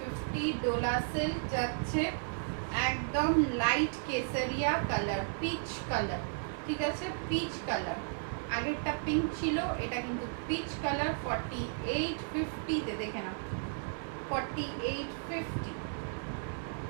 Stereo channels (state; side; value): silent; left; digital silence